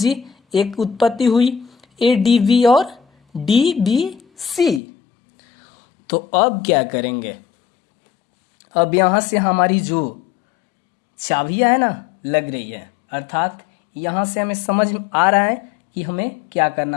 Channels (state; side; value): drops out; right; at 4.8 s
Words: एक उत्पत्ति हुई ADB और DBC। तो अब क्या करेंगे, अब यहां से हमारी जो चाबियां है ना लग रही है, अर्थात यहां से हमें समझ आ रहा है कि हमें क्या